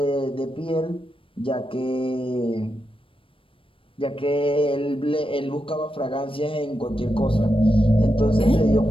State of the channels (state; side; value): late; right; 0.25 ms